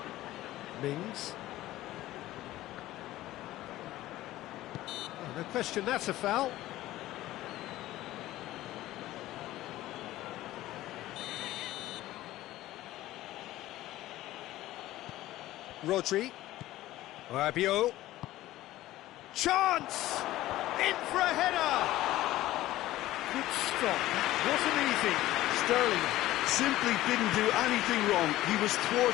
Mings. Oh, no question, that's a foul. Rodri. Rabiot. Chance! In for a header! Good stop, that wasn't easy. Sterling simply didn't do anything wrong. He was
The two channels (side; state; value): right; quieter; 15.7 dB